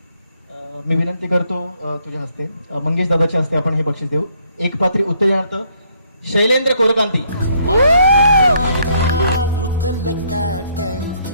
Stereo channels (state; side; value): inverted; both; correlation -0.69